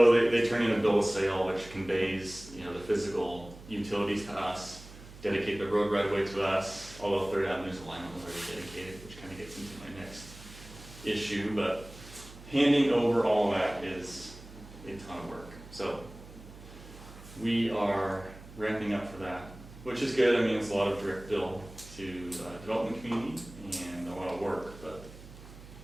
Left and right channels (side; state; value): right; noise; hum, 17 dB below the sound